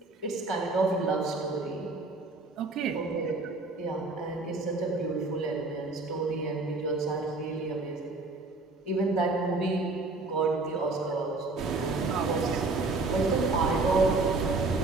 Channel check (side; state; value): left; quieter; 3.4 dB